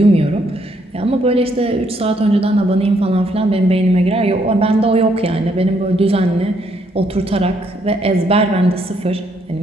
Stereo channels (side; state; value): both; normal; correlation 0.72